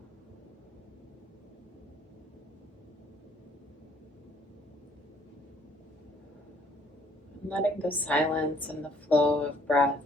Letting the silence and the flow of breath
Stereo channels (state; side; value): normal; both; correlation 0.63